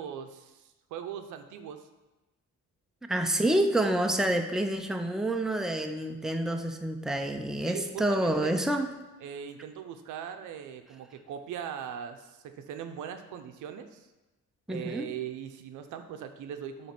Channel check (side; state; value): both; normal; correlation 0.71